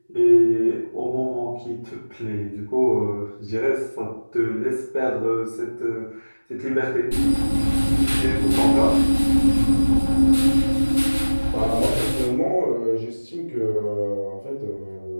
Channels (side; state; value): both; inverted; correlation -1.00